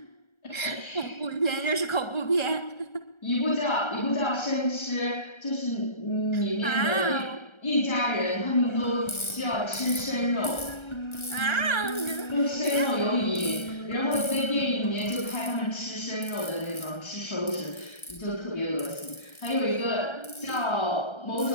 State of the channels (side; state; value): right; late; 1.3 ms